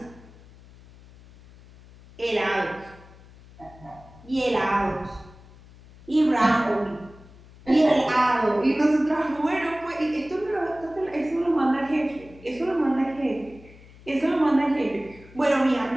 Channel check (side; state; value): left; noise; hum, 22 dB below the sound